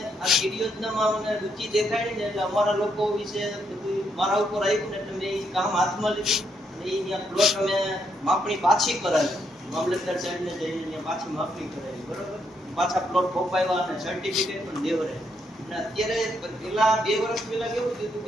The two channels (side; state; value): both; normal; correlation 0.76